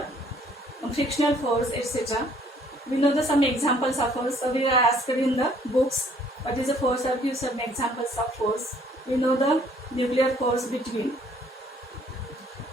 frictional force, etc. We know the some examples of force. So we are asked in the books what is the force, or give some examples of force. We know the nuclear force between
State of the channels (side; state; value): both; normal; correlation 0.61